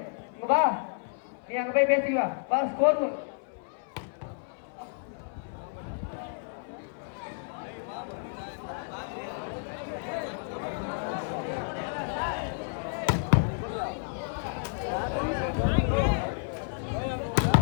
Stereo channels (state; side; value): silent; right; 56 dB below the other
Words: இங்க வா நீ அங்க போய் பேசிக்க வா ஸ்கோர்